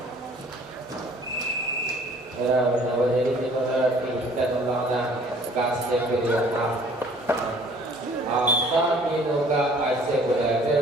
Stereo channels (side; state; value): both; normal; correlation 0.54